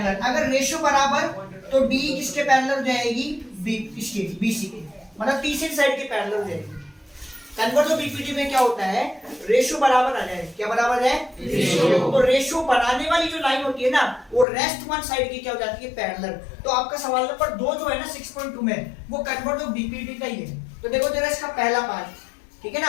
अगर रेशियो बराबर तो डी किसके पैरेलल हो जाएगी, बी इसके, बीसी के, मतलब तीसरी साइड के पैरेलल हो जाएगी। कन्वर्ट ऑफ बीपीटी में क्या होता है, रेशियो बराबर आ जाए, क्या बराबर है, रेशियो। तो रेशियो बनाने वाली जो लाइन होती है ना, वो रेस्ट वन साइड की क्या हो जाती है, पैरेलल। तो आपका सवाल नंबर 2 जो है ना 6.2 में, वो कन्वर्ट ऑफ बीपीटी का ही है। तो देखो जरा इसका पहला पार्ट, ठीक है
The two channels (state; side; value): drops out; right; at 14.5 s